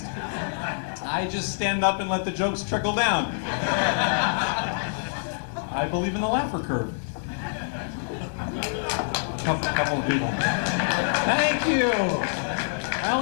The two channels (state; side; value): silent; right; digital silence